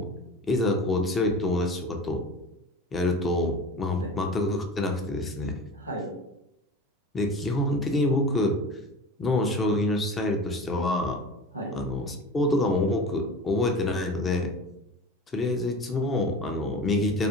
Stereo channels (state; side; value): normal; both; correlation 0.34